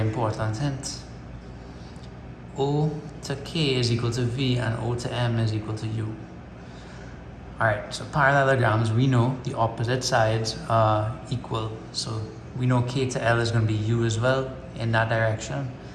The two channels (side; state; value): both; identical; correlation 1.00